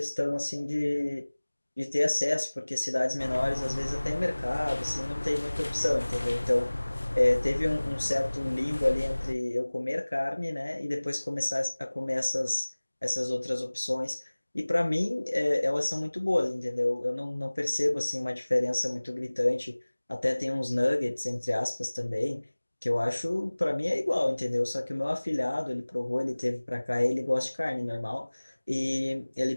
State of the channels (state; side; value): inverted; both; correlation -1.00